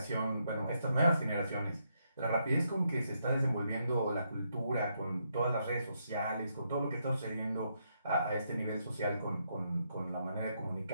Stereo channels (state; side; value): inverted; both; correlation -0.78